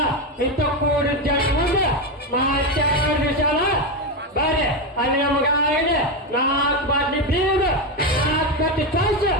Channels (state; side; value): normal; both; correlation 0.11